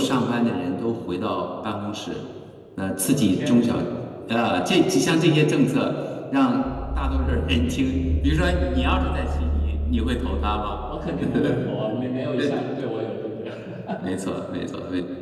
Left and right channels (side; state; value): both; identical; correlation 1.00